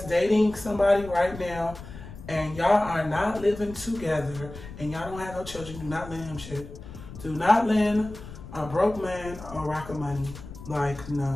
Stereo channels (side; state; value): left; noise; rumble, 14 dB below the sound